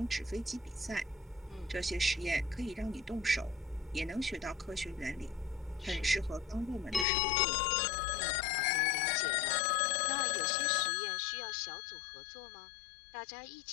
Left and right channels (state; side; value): drops out; right; at 7.1 s